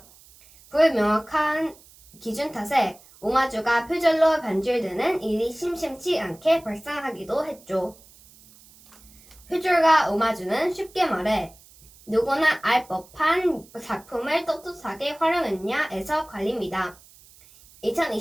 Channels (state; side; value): noise; right; hiss, 25 dB below the sound